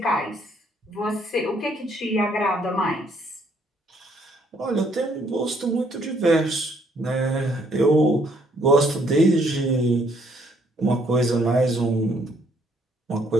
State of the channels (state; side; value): normal; both; correlation 0.67